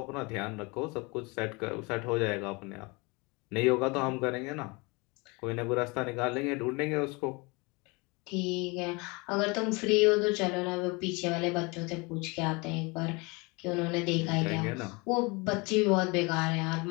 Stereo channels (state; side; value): quieter; right; 27.5 dB